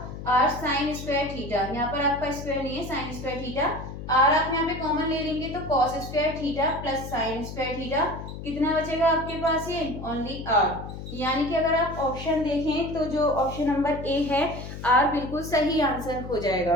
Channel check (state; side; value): noise; left; hum, 10 dB below the sound